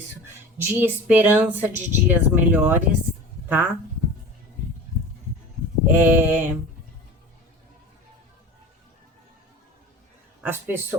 De esperança de dias melhores, tá? As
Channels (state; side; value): normal; both; correlation 0.36